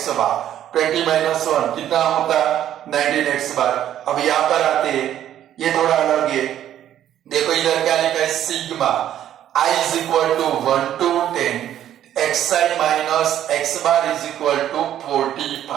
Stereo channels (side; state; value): left; quieter; 11.2 dB